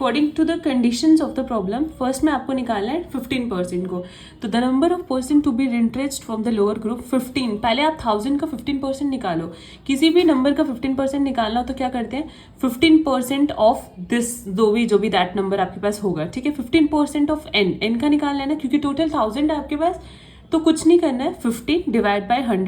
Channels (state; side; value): identical; both; correlation 1.00